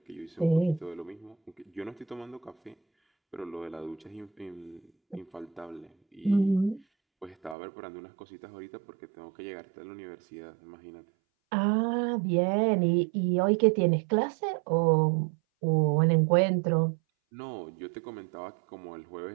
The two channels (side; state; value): left; drops out; at 7.6 s